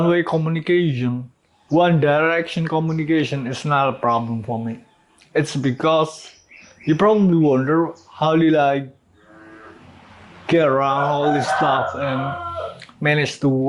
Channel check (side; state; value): both; identical; correlation 1.00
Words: communication, one direction communication is not a problem for me. It's because you probably wonder, how did I get around all this stuff and manage to